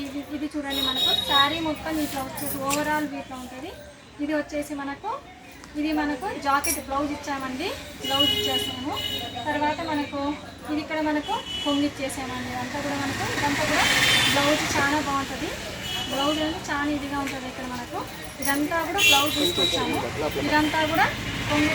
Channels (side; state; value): both; identical; correlation 1.00